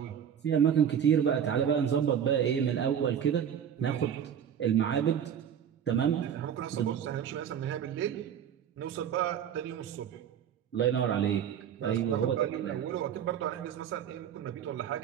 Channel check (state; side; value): quieter; left; 8.7 dB